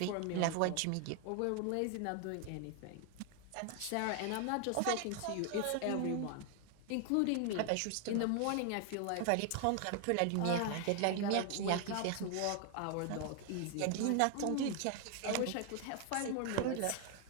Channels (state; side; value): different; both; correlation 0.00